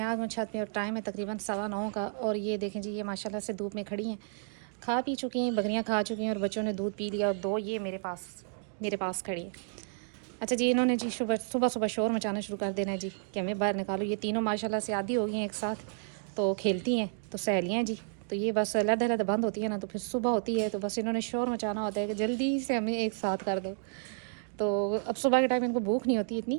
आज हूँ छत पे और टाइम है तकरीबन 9:15 का। और ये देखें जी, ये माशाल्लाह से धूप में खड़ी हैं, खा पी चुकी हैं, बकरियाँ खा चुकी हैं और बच्चों ने दूध पी लिया। और दो ये मेरे पास खड़ी हैं। अच्छा जी, इन्होंने जी सुबह सुबह सुबह शोर मचाना शुरू कर देना है जी कि हमें बाहर निकालो। ये तीनों माशाल्लाह से आदी हो गई हैं एक साथ, तो खेलती हैं, तो सहेलियाँ हैं जी। तो ये बस अलग अलग बंद होती है ना, तो फिर सुबह होती है तो बस इन्होंने शोर मचाना होता है कि जल्दी से हमें एक साथ कर दो। तो अब सुबह के टाइम इनको भूख नहीं होती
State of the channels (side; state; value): left; silent; digital silence